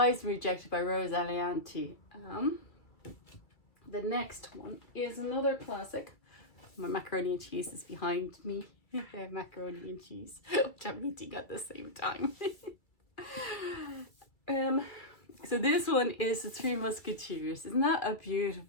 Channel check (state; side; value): late; right; 2.3 ms